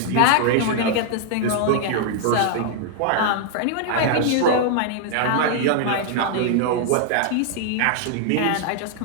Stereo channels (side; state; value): both; different; correlation 0.00